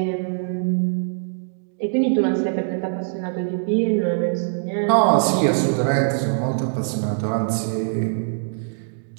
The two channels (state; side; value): silent; left; digital silence